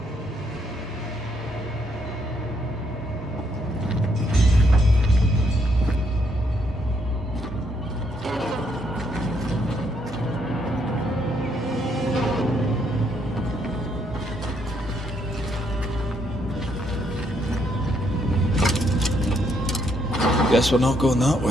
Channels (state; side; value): normal; both; correlation 0.73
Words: Guess we're not going that